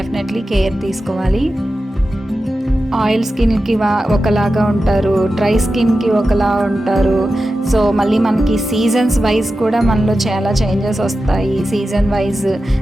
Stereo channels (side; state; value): both; normal; correlation 0.92